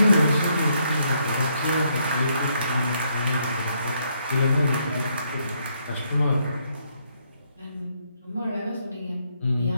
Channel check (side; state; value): both; inverted; correlation -0.74